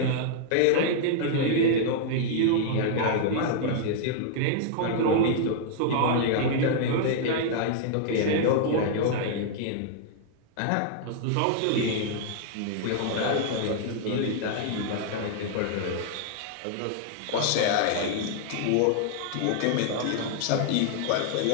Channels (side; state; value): both; different; correlation -0.01